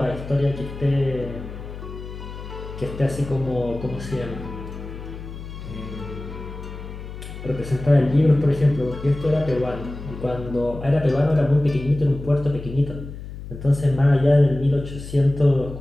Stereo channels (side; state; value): left; noise; hum, 11 dB below the sound